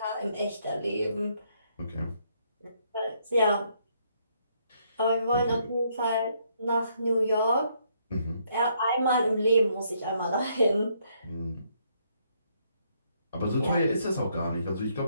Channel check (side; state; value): both; inverted; correlation -0.72